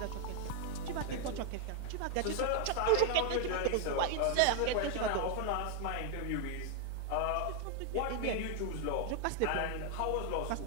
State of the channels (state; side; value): different; both; correlation 0.00